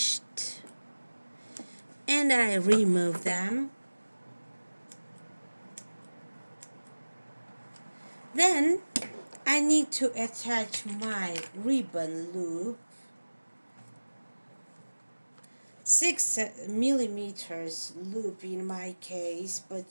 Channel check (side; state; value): both; inverted; correlation -1.00